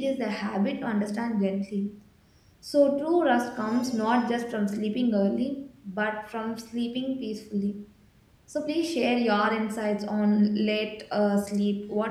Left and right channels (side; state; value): both; identical; correlation 1.00